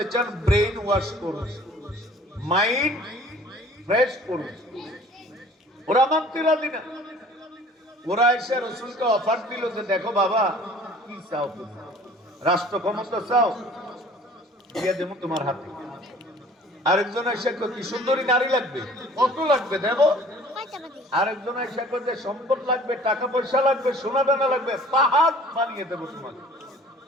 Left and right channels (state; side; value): normal; both; correlation 0.50